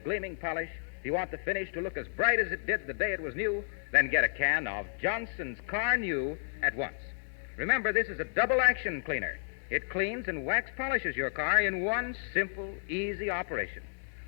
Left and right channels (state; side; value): silent; right; 57 dB below the other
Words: gleaming polish, if you want the finish to look as bright as it did the day it was new, then get a can of Johnson's Car New at once. Remember, this is a double-action cleaner. It cleans and wax polishes your car in one simple, easy operation.